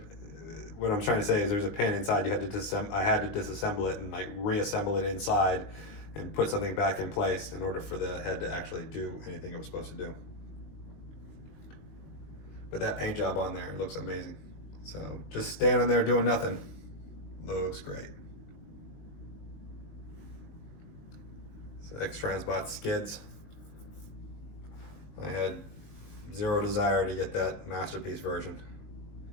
What I'm trying to say is there's a pin inside. You had to I had to disassemble it and like reassemble it inside, and put something back in place in order for the head to actually do anything it was supposed to do. But that paint job on there looks amazing. So just standing there doing nothing looks great. So X Transbots Skids. I had zero desire to get that Masterpiece version.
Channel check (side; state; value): right; late; 20 ms